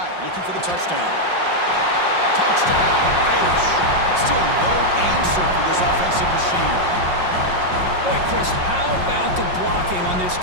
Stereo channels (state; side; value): late; left; 5.6 ms